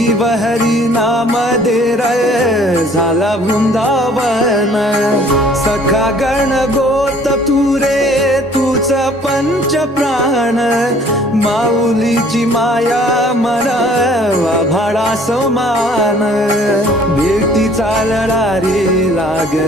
हरी नाम दे रे झाला वृंदावन सखा गण गोत तू रे तूच पंच प्राण माऊलीची माया मन भाडा समान भेटी चालला रे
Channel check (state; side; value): normal; both; correlation 0.55